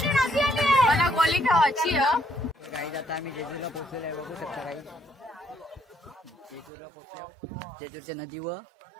मला गोली खावायची काही आता आम्ही जेजूरला पोहोचलेलो आहे बघू शकता काही जेजूरला पोहोचलो जेजूरच्या नदीवर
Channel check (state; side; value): drops out; left; at 6.7 s